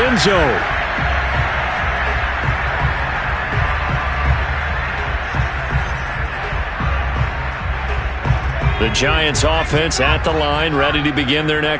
zone. The Giants offense at the line, ready to begin their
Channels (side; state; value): both; identical; correlation 1.00